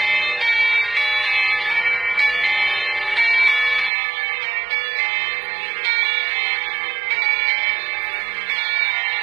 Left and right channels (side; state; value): left; drops out; at 3.9 s